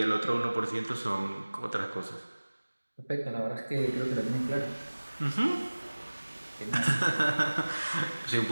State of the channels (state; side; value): inverted; both; correlation -1.00